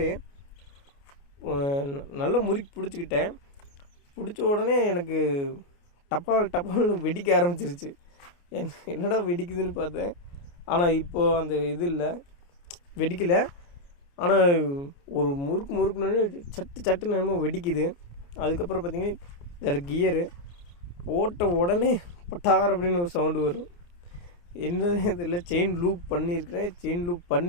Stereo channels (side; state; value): right; late; 29 ms